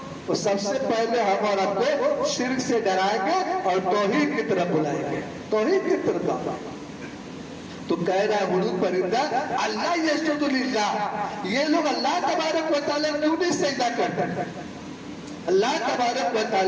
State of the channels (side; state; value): both; identical; correlation 1.00